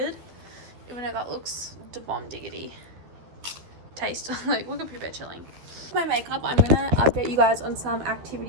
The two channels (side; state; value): left; late; 12 ms